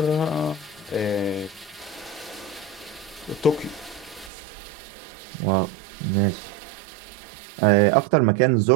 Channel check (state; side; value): drops out; left; at 4.3 s